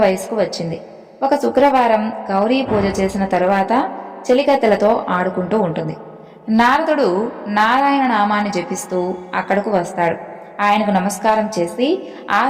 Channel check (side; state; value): both; identical; correlation 1.00